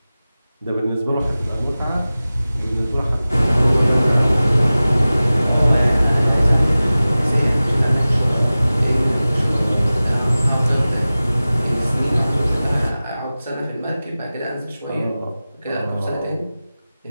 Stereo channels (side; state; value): both; inverted; correlation -0.97